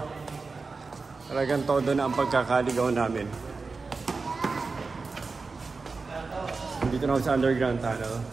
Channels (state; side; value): quieter; left; 4.2 dB